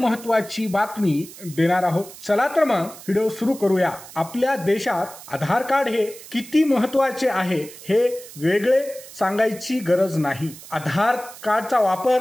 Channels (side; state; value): right; noise; hiss, 17 dB below the sound